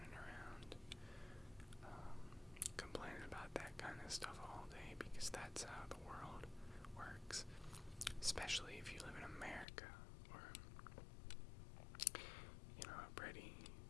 around complaining about that kind of stuff all day, because that's how the world works. Especially if you live in America, or, a pretty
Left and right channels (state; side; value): drops out; right; at 9.7 s